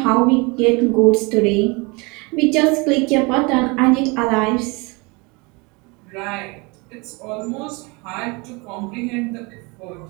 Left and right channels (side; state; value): left; quieter; 28.0 dB